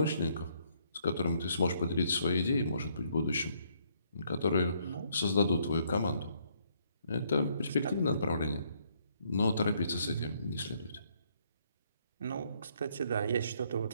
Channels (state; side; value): inverted; both; correlation -0.69